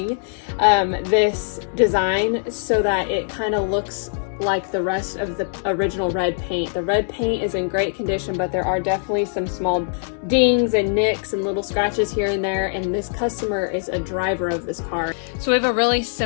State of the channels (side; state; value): right; silent; 64 dB below the other